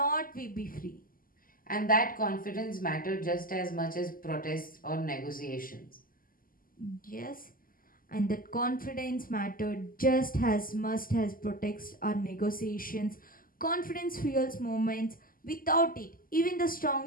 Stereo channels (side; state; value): right; late; 0.41 ms